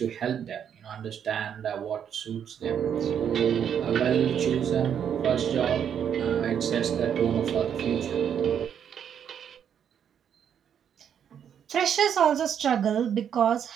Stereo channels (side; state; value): left; quieter; 8.5 dB